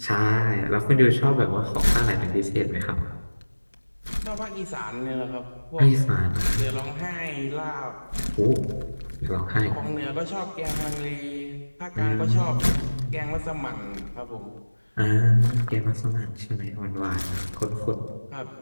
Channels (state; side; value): inverted; both; correlation -1.00